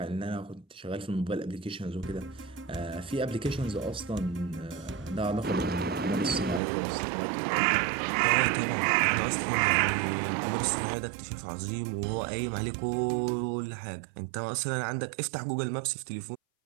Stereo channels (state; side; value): drops out; left; at 6.6 s